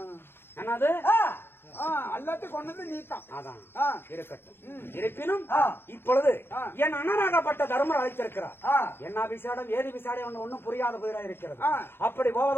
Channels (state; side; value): late; right; 0.11 ms